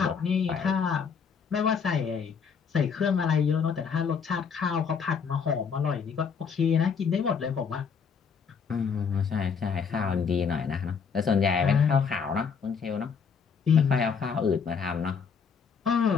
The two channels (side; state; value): right; quieter; 6.2 dB